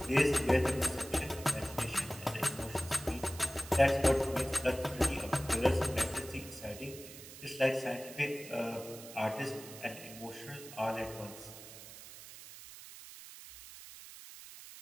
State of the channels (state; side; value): noise; right; hiss, 15 dB below the sound